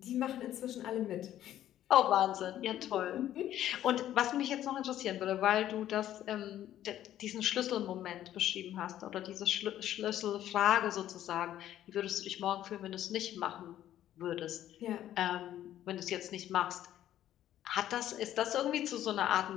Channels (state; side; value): quieter; right; 12.1 dB